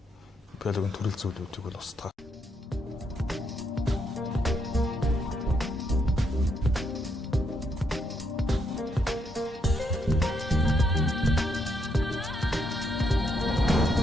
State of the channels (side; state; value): both; normal; correlation 0.76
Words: биологийн төрөл зүйлүүдийг бол устгах.